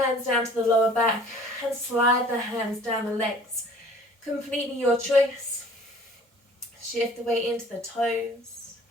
down to the lower back and slide the hands down the legs. Completely your choice. Shift the weight into the toes.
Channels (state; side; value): normal; both; correlation 0.51